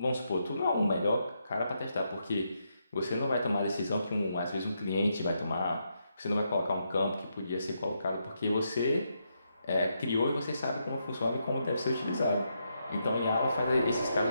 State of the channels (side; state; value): both; inverted; correlation -0.81